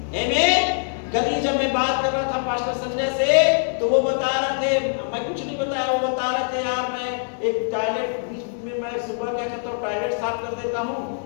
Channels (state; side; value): silent; right; digital silence